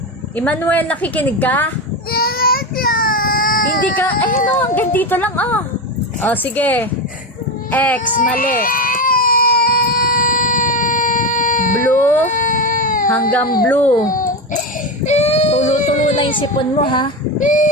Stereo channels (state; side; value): normal; both; correlation 0.17